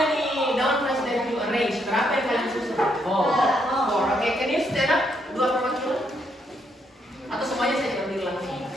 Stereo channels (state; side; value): normal; both; correlation 0.75